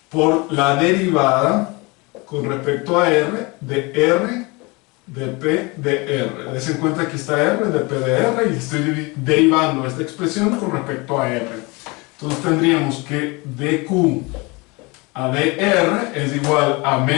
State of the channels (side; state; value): right; quieter; 26.3 dB